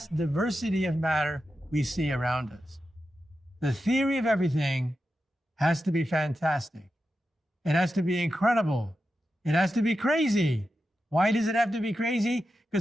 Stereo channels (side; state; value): both; normal; correlation 0.90